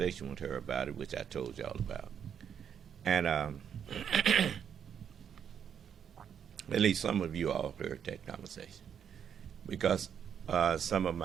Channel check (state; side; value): quieter; left; 8.2 dB